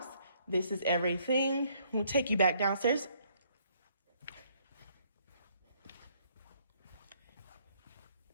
This is everything. We'll take you back downstairs.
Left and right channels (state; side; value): inverted; both; correlation -0.67